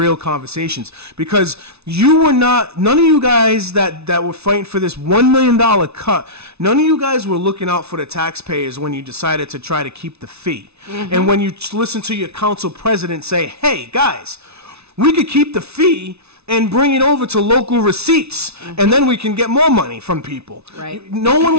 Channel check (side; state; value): left; late; 0.80 ms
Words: conversations. Because none of you guys that were fighting for this $1 million cut, none of you guys were looking out for the taxpayers when you decided to try to keep the fee. And when you listen to your council president say, hey, guys, we could keep the fee and bring it over to local receipts, and then we can get more money from people. Right. No one